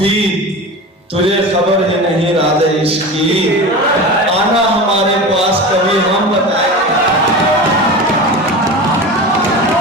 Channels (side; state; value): both; normal; correlation 0.30